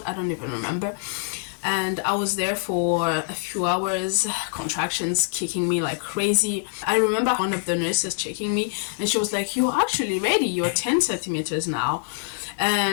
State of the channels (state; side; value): silent; right; 62 dB below the other